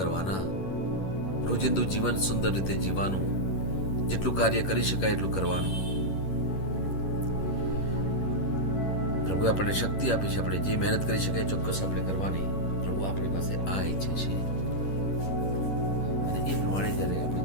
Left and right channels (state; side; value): late; right; 11 ms